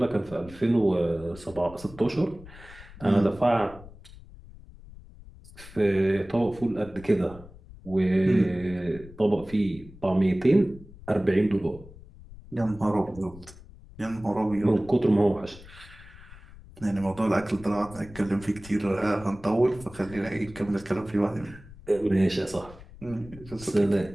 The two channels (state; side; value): noise; left; rumble, 19 dB below the sound